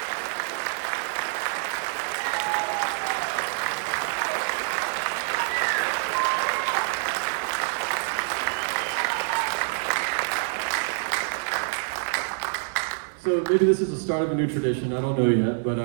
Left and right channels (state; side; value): silent; left; digital silence